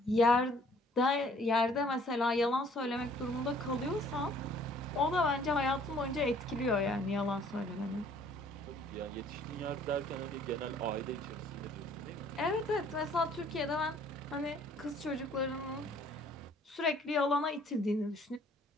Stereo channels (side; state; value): both; normal; correlation 0.58